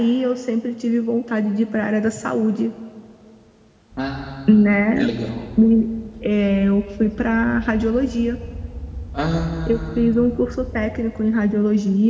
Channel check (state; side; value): identical; both; correlation 1.00